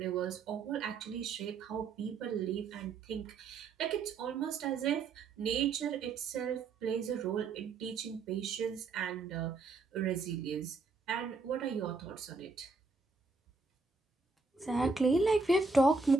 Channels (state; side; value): quieter; left; 4.2 dB